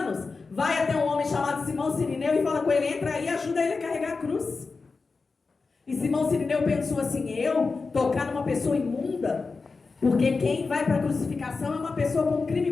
vai até um homem chamado Simão Sirineu e fala com ele, entra aí e ajuda ele a carregar a cruz. E Simão Sirineu pensou assim, eu tocar numa pessoa imunda? Porque quem vai para a crucificação é uma pessoa com um crime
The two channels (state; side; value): quieter; right; 4.3 dB